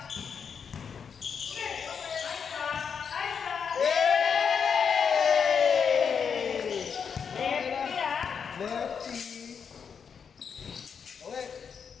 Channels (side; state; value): right; quieter; 6.6 dB